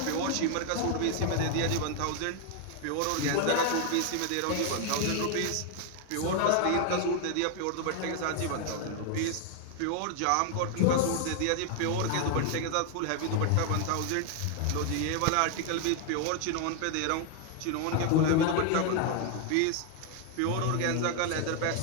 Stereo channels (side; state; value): both; different; correlation 0.00